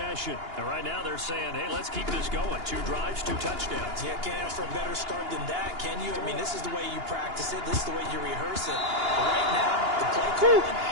And right now they're saying, hey, let's keep this going. 2 drives, 2 touchdowns. Yeah, can't ask for a better start than that, can you? I mean, this is the way you practice it. This is the way you rehearse it. But right now, the play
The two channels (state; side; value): late; left; 2.8 ms